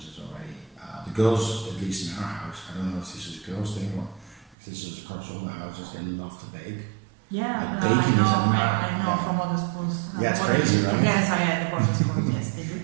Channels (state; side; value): drops out; left; at 4.5 s